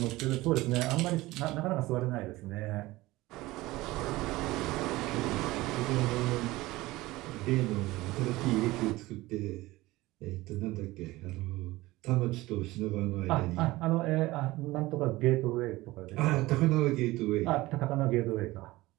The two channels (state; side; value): quieter; left; 19.1 dB